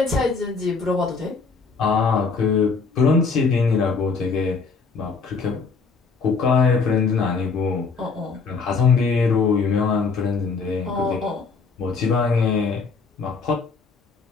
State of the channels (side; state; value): right; quieter; 4.7 dB